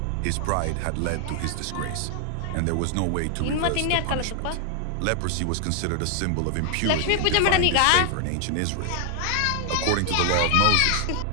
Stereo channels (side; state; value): both; different; correlation 0.00